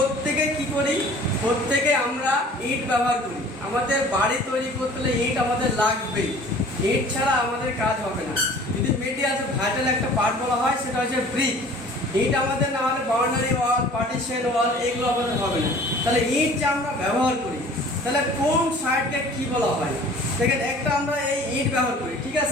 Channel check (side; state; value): both; normal; correlation 0.48